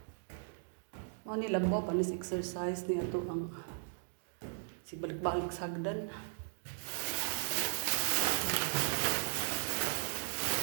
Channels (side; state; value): left; silent; digital silence